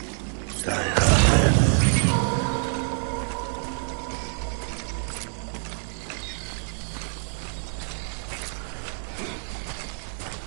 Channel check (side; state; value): left; silent; 61 dB below the other